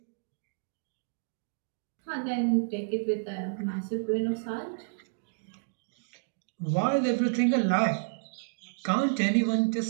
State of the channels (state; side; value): silent; left; digital silence